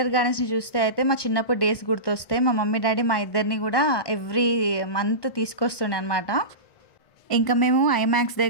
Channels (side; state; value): right; late; 1.2 ms